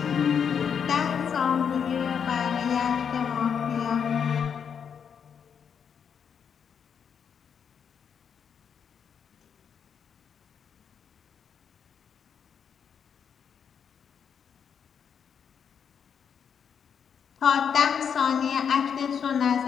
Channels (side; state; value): right; quieter; 7.3 dB